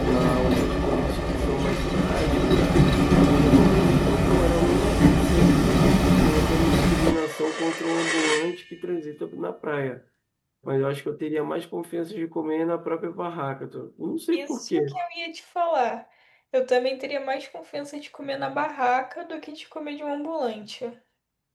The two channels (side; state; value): both; identical; correlation 1.00